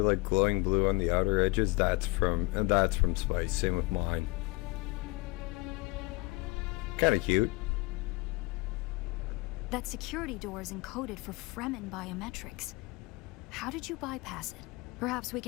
like glowing blue on the outer edges? That's from Spice. Same with mine. Kind of cute. That security door is encoded for Fremen biometrics. How did you bypass it? Perhaps we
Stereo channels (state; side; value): quieter; right; 23.8 dB